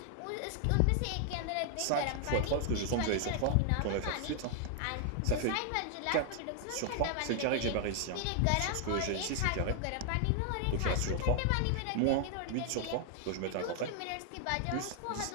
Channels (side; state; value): both; different; correlation 0.00